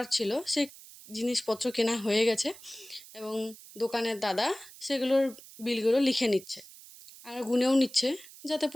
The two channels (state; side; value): noise; right; hiss, 19 dB below the sound